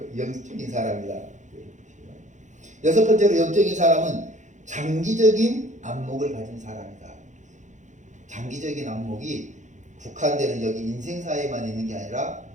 영적인 사람이다. 여섯 번째로, 영적인 사람은 장기적인 안목을 가진 사람이다. 장기적인 안목이 국한되는 여기 인생사에만 있는 게 아니라,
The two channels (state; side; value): late; left; 0.35 ms